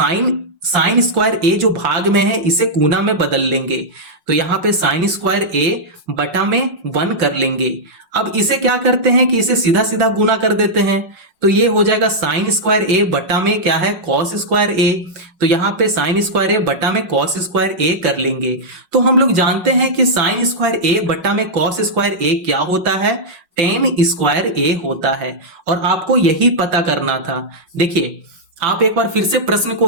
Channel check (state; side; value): late; left; 5.5 ms